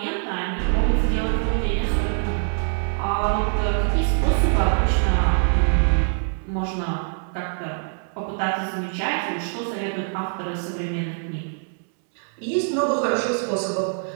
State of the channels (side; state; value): left; silent; 63 dB below the other